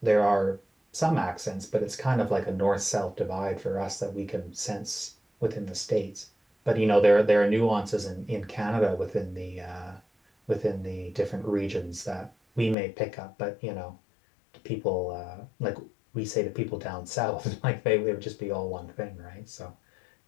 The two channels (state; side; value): drops out; right; at 12.8 s